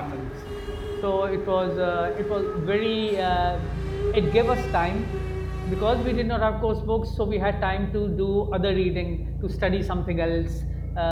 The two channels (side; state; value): both; identical; correlation 1.00